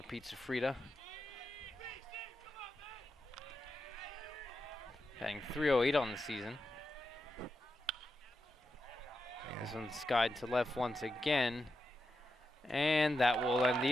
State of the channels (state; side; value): normal; both; correlation 0.87